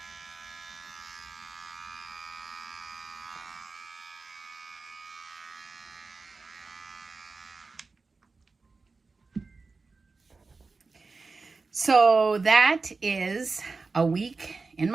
So that is a week in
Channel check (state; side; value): quieter; left; 4.1 dB